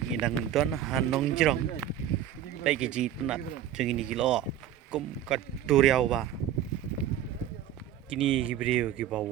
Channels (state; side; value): quieter; left; 10.7 dB